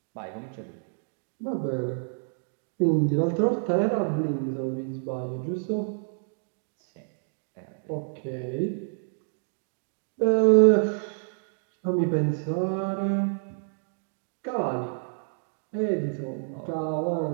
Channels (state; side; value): silent; left; digital silence